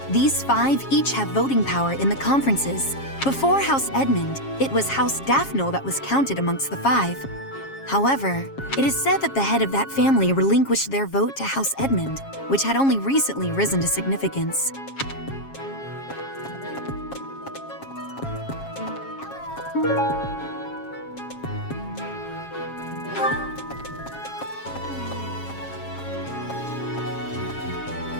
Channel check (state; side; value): late; right; 7.3 ms